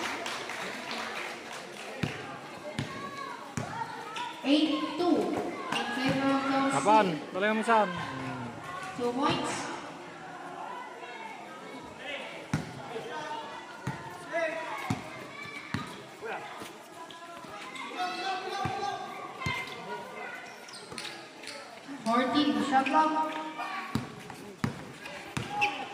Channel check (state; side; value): identical; both; correlation 1.00